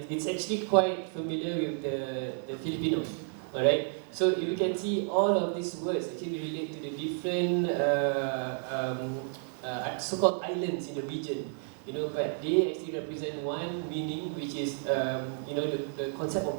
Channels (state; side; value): silent; left; 57 dB below the other